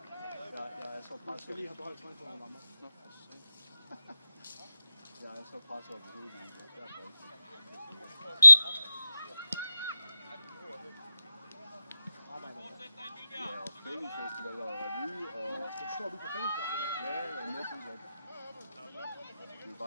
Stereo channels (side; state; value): both; inverted; correlation -0.86